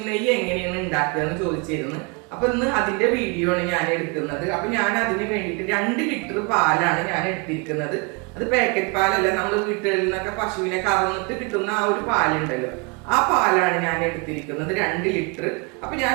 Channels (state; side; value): quieter; left; 31.0 dB